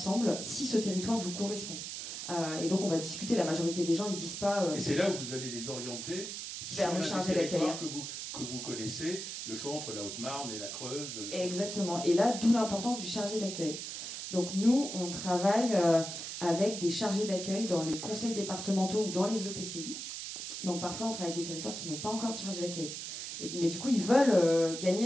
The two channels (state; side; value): noise; right; hiss, 7 dB below the sound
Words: si ce territoire vous correspond. Et donc on va discuter, la majorité des gens ne disent pas... et c'est là où vous allez les orienter vers le chargé d'accueil que vous connaissez, le choix entre la Haute-Marne et la Creuse. Exactement, et là, d'où l'importance du chargé d'accueil. Donc nous, on travaille avec des chargés d'accueil dans les conseils départementaux ou dans les EPCI. Donc parfois, on travaille avec des territoires qui n'ont pas encore de chargé d'accueil. Mais du coup, ils veulent